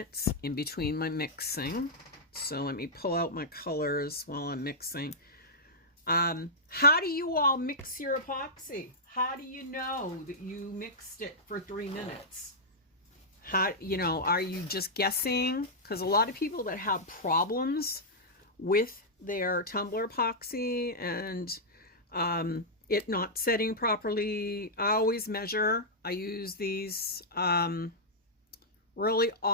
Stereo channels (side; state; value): both; normal; correlation -0.09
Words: in between my mixing. So let me pull out my colors while I'm mixing. How do you all mix your epoxy? How do you know that you mixed it for 3 minutes? How, you know, are you just guessing? Because a lot of people that have problems with their Tumblr Epoxy and it not setting properly, I always measure. I use these really